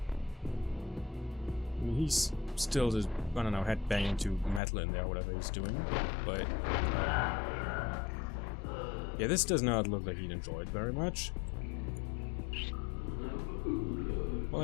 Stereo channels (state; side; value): drops out; right; at 4.6 s